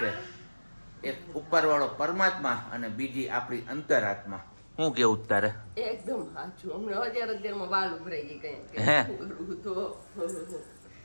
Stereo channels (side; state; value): both; inverted; correlation -1.00